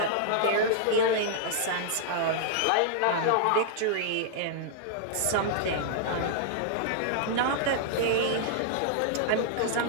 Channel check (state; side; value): different; both; correlation -0.01